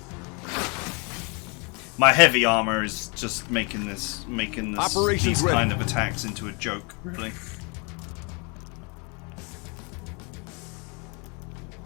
My heavy armor is just making these Operations ready. kind of attacks into a joke, really.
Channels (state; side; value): quieter; right; 32.4 dB